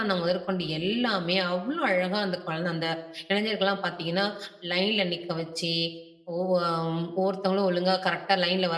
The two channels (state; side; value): identical; both; correlation 1.00